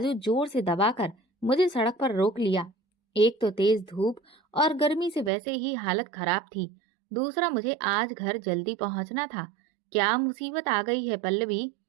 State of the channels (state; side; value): drops out; left; at 5.3 s